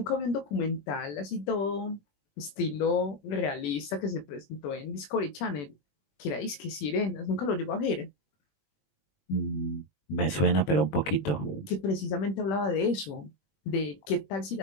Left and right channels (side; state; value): right; late; 21 ms